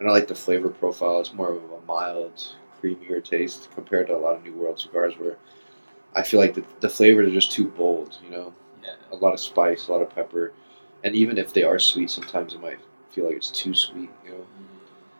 I like the flavor profile. It's more of a mild, creamier taste compared to a lot of New World cigars where I feel like the flavors are just too bold, you know? Yeah. A lot of spice, a lot of pepper. And even if they are sweet, sometimes it might feel like it's too sweet, you know?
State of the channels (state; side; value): inverted; both; correlation -1.00